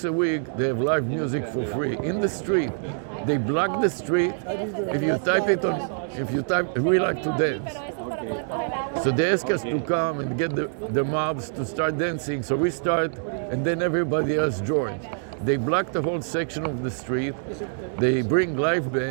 a week, they have live music for free in the street. They block the street. If you type it on, we like to dance. So they ask us to come and get the mobs to start dancing. So we start, and then everybody else joins. They block the whole section of the street. They bring live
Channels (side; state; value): left; silent; digital silence